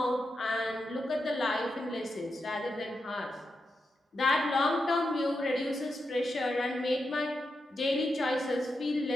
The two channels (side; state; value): both; normal; correlation 0.87